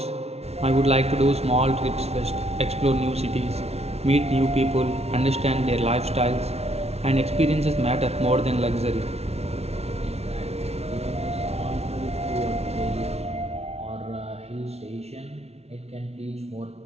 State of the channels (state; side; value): late; left; 0.31 ms